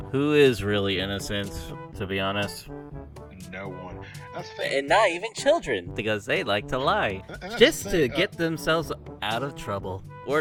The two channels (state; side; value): identical; both; correlation 1.00